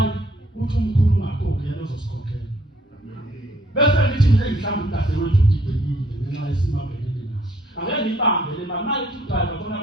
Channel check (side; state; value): both; normal; correlation 0.64